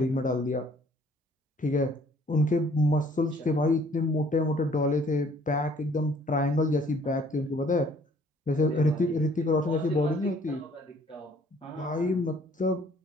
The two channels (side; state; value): both; normal; correlation 0.59